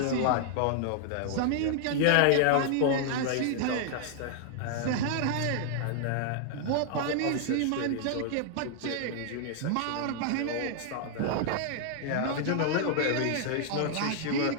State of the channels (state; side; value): different; both; correlation 0.00